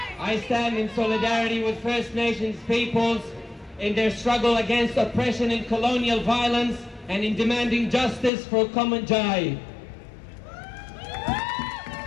I stand in solidarity with First Nations peoples in their struggle against oppression and colonial violence and in demanding justice for Kumanjai.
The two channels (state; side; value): drops out; right; at 8.3 s